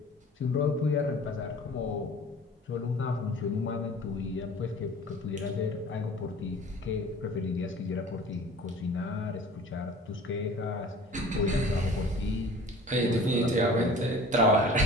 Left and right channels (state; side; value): normal; both; correlation 0.44